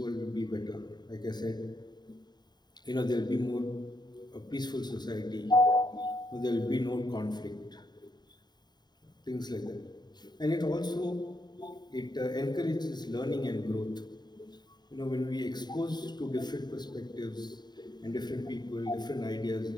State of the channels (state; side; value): late; right; 0.20 ms